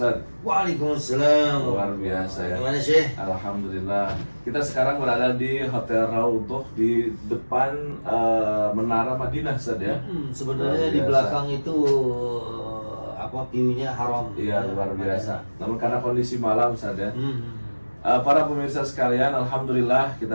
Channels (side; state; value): both; inverted; correlation -1.00